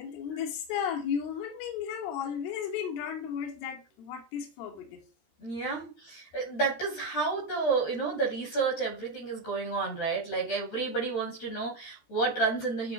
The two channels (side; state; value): right; late; 13 ms